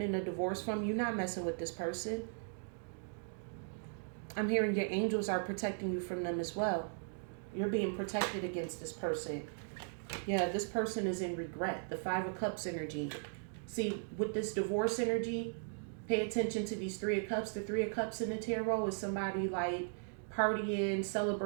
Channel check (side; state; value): left; silent; digital silence